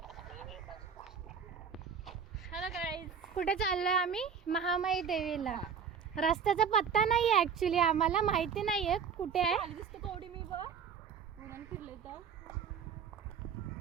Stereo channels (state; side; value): quieter; left; 6.8 dB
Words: hello guys. कुठे चाललोय आम्ही? महामाई देवीला. रस्त्याचा पत्ता नाहीये, ऍक्च्युली आम्हाला माहिती नाहीये कुठे आहे. खाली दिसतो कवडी मी बघ उन्हान फिरले तर